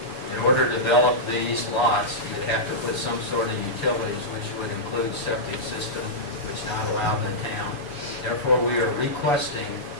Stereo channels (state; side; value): late; right; 7.1 ms